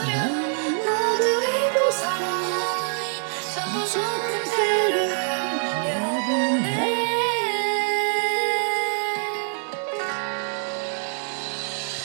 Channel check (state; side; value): silent; left; digital silence